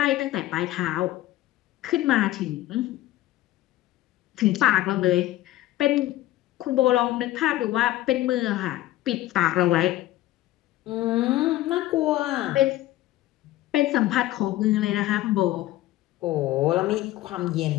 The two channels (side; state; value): right; quieter; 15.6 dB